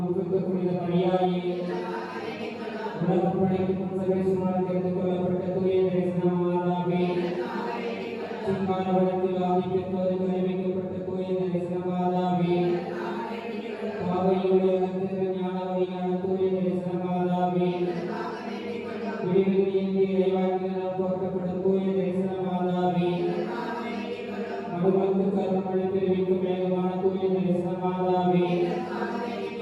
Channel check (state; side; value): identical; both; correlation 1.00